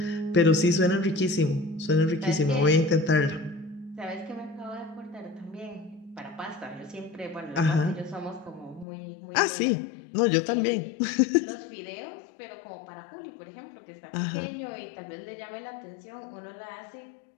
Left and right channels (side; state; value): right; drops out; at 8.8 s